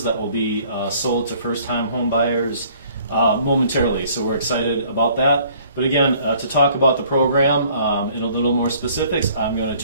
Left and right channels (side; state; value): both; inverted; correlation -0.58